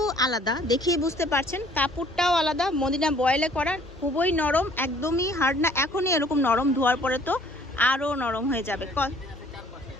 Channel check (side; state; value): both; normal; correlation 0.57